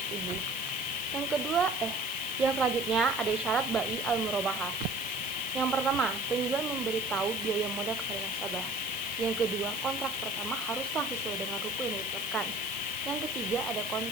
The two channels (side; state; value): right; noise; hiss, 10 dB below the sound